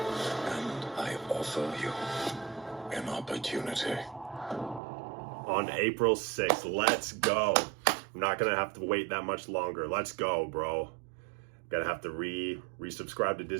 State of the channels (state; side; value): drops out; left; at 4.8 s